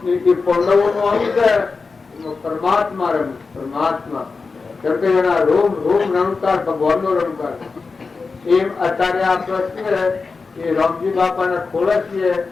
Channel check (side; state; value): right; quieter; 4.4 dB